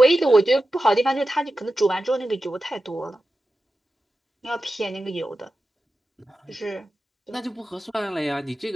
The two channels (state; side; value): normal; both; correlation 0.92